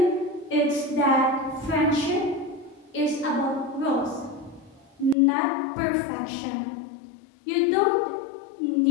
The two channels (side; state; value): right; drops out; at 5.2 s